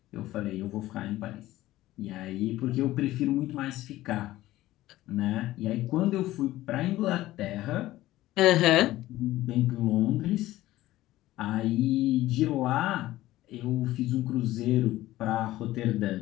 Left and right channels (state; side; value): quieter; right; 16.0 dB